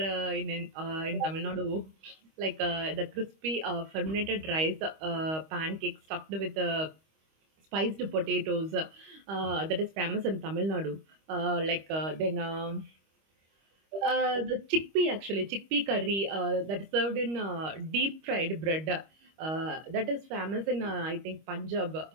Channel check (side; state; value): left; late; 25 ms